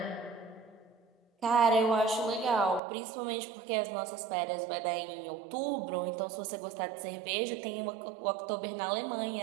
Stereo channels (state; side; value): drops out; left; at 2.8 s